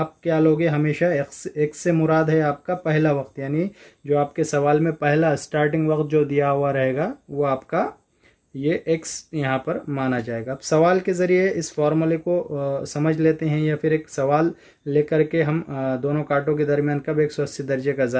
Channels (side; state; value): both; identical; correlation 1.00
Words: क्या लोगे, हमेशा x से मुराद है आपका पहला वक्त, यानी जो आपके सवाल में पहला स्टार्टिंग वक्त जो दिया हुआ रहेगा वो आपका ये x यहाँ पर माना जाएगा। अब सवाल के ज़रिए इस फार्मूले को समझ लेते हैं, या फिर एक सवाल लेकर के हम दोनों कांटों के दरमियान कब 180 दर्जे का